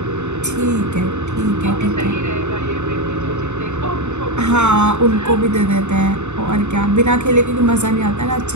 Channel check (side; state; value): left; late; 0.83 ms